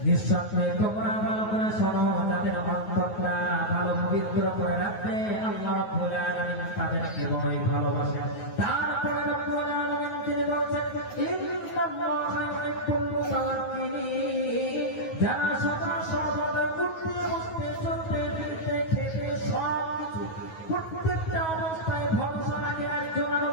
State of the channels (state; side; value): late; right; 9.4 ms